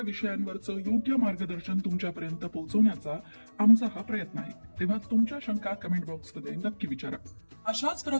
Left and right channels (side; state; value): both; inverted; correlation -1.00